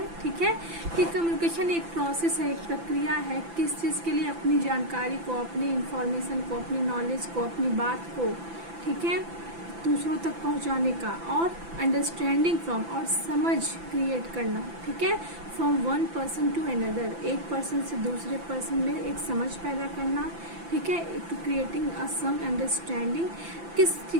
ठीक है, कि कम्युनिकेशन एक प्रोसेस है, एक प्रक्रिया है, किस चीज़ के लिए, अपनी जानकारी को, अपनी इंफॉर्मेशन को, अपनी नॉलेज को, अपनी बात को, ठीक है, दूसरों तक पहुंचाने का, और अंडरस्टैंडिंग फ्रॉम, और समझ क्रिएट करना, ठीक है, from one person to another, एक पर्सन से दूसरे पर्सन में एक समझ पैदा करना, ठीक है, to creating a some understanding.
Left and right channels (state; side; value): late; left; 5.9 ms